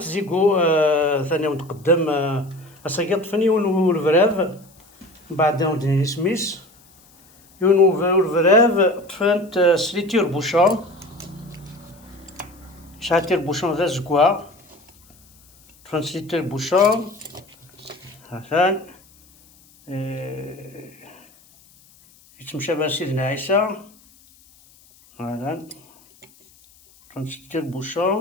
ثاني متقدم أساكي طفني والفراف من بعد ودني سميس والفراف طفنت سليتير بوشون شاتير بوشون ذا زكوا طفنت سليتير بوشون هاثان يتمشى بها سيدنا عيسى هذا طفنت سليتير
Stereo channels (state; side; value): noise; left; hiss, 28 dB below the sound